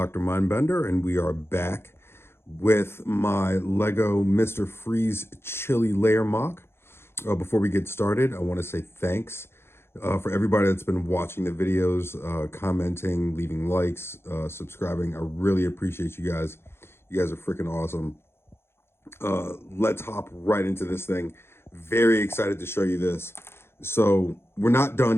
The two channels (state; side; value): late; right; 0.12 ms